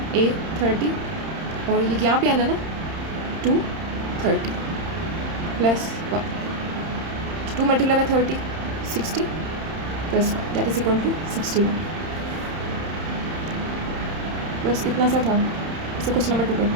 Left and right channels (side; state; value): left; late; 31 ms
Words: A30 और ये यहाँ पे n है ना 230 + 1, 2 × 30 60 + 1 दैट इज इक्वल टू 61। बस इतना सा था। इसे क्वेश्चन नंबर 2